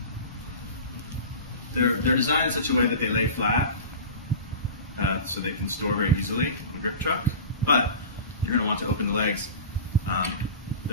they're designed in such a way that they lay flat so they can store very easily on a grip truck, but you're going to want to open the legs.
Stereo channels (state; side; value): inverted; both; correlation -0.34